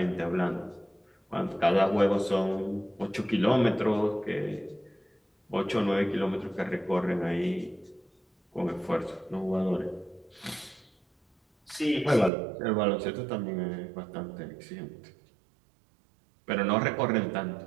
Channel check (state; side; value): drops out; left; at 12.3 s